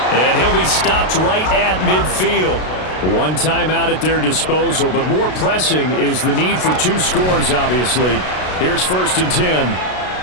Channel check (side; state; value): right; late; 32 ms